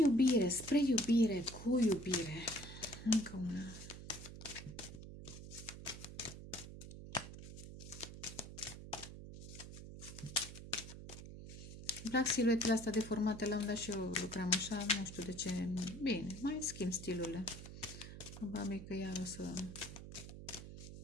spre iubire, cu iubire. Încă una. Îmi plac siluetele astea deformate, la un dat și eu lucram așa, nu știu de ce. Bine, mai schimb stilurile. Probabil că iar o să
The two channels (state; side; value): noise; right; hum, 12 dB below the sound